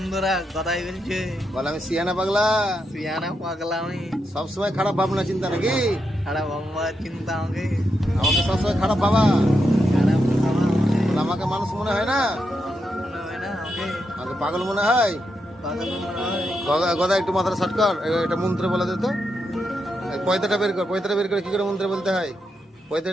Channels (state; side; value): normal; both; correlation 0.84